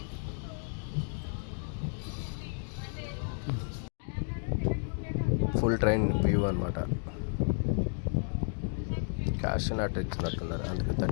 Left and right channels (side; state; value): right; silent; 56 dB below the other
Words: ఫుల్ ట్రైన్ వ్యూ అనమాట. క్యాష్ నాట్ ఇచ్చినట్టున్నారు, అందుకే